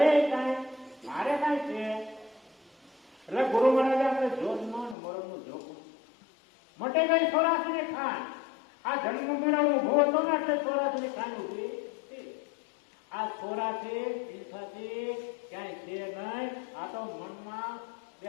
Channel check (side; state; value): right; drops out; at 5.0 s